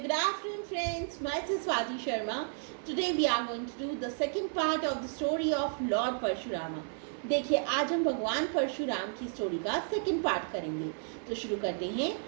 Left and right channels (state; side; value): silent; left; 56 dB below the other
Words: good afternoon, friends. Myself Swati Sharma. Today we are going to do the second part of the story of Lord Parshurama. देखिए आज हम भगवान परशुराम की story का second part करेंगे. तो शुरू करते हैं.